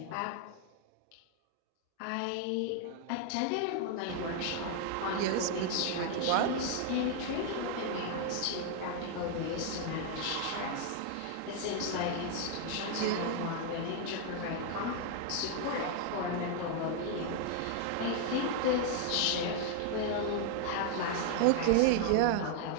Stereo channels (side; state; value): both; different; correlation 0.00